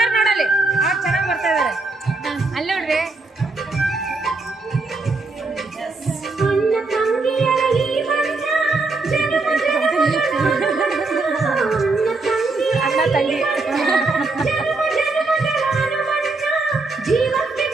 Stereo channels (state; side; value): quieter; left; 3.5 dB